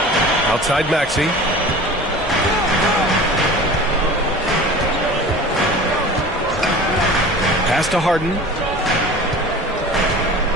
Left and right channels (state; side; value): normal; both; correlation 0.39